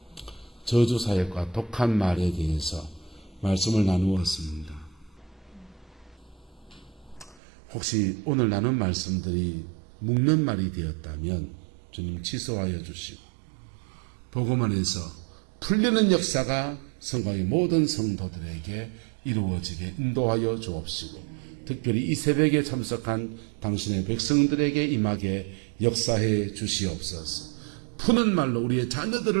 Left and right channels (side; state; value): left; drops out; at 7.4 s